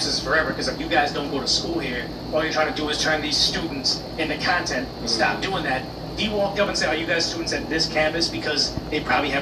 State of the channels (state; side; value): identical; both; correlation 1.00